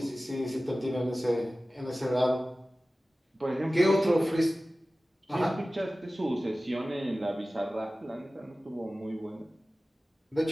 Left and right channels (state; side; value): normal; both; correlation 0.96